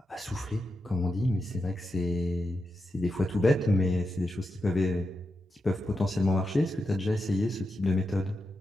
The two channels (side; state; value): both; normal; correlation 0.88